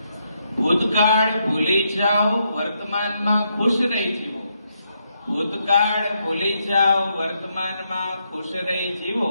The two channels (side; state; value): both; inverted; correlation -0.79